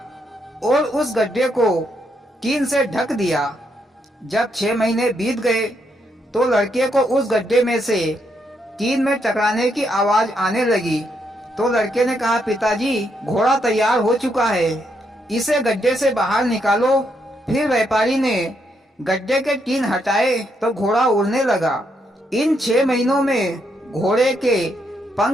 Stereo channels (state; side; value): normal; both; correlation 0.77